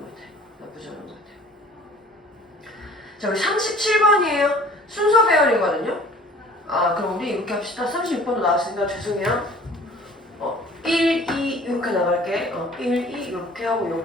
같아. 나쁘지 않은 것 같아. 자, 우리 37번이에요. 순서 배열이거든요. 그럼 우리 이렇게 합시다. 36번도 나왔으니까 죄송해요. 1, 2 이렇게 나갈게. 1, 2 이렇게 하고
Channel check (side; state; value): both; normal; correlation 0.50